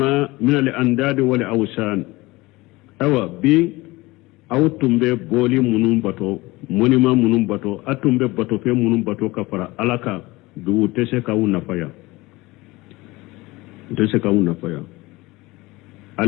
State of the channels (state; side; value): quieter; right; 21.2 dB